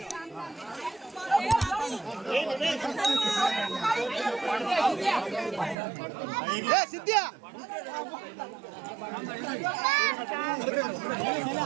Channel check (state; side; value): drops out; left; at 5.8 s